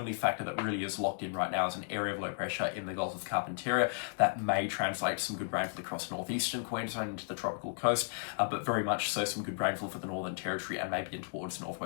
factor that really is locked in right now is an area of low pressure in the Gulf of Carpentaria that may translate to some good rainfall across northeastern Queensland into the tropical coast, but very much so some good rainfall for the Northern Territory and maybe in towards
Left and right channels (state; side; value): silent; right; digital silence